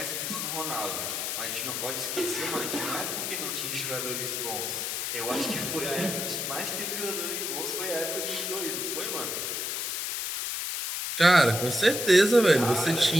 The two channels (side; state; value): left; noise; hiss, 2 dB below the sound